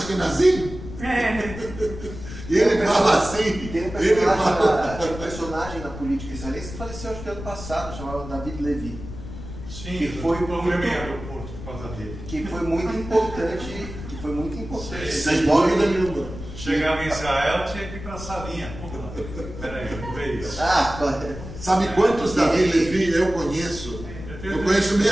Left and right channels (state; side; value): noise; left; rumble, 11 dB below the sound